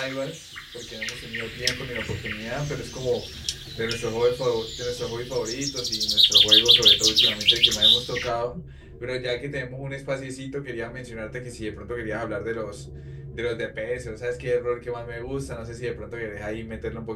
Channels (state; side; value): identical; both; correlation 1.00